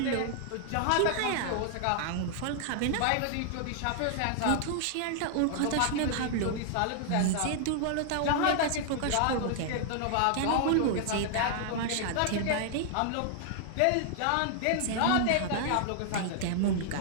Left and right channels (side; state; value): both; different; correlation 0.00